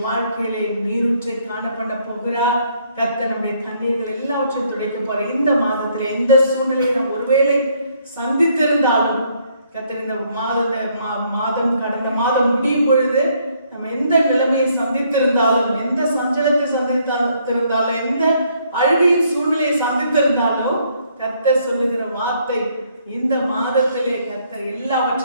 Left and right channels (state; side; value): inverted; both; correlation -0.68